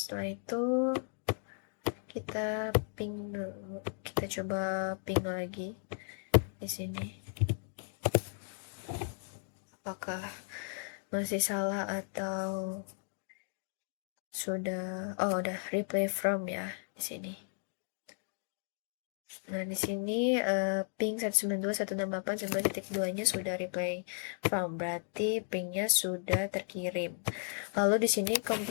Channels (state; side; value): silent; right; 54 dB below the other